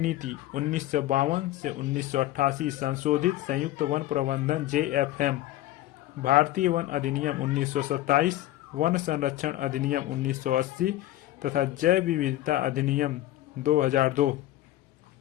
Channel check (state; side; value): quieter; right; 15.0 dB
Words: 1952 से 1988, संशोधित संयुक्त वन प्रबंधन JFM, भारतीय वन अधिनियम 1927, वन संरक्षण अधिनियम 1980 तथा जैव विविधता अधिनियम 2002।